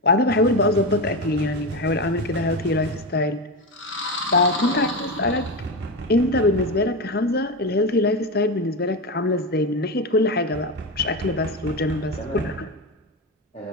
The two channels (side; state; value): both; normal; correlation 0.17